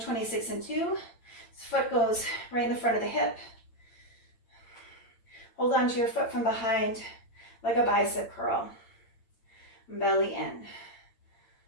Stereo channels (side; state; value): right; late; 8.8 ms